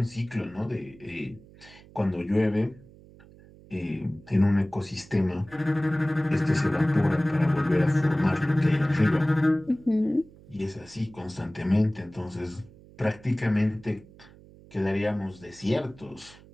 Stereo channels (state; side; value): noise; right; hum, 23 dB below the sound